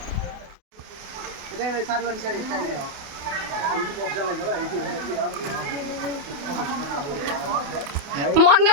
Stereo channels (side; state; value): left; late; 28 ms